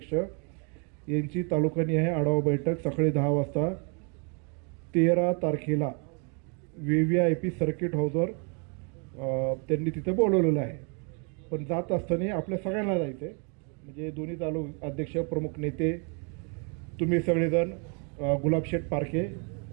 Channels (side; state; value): left; quieter; 36.8 dB